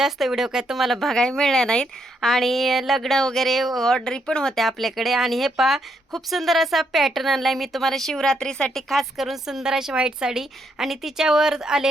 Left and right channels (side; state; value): both; normal; correlation 0.76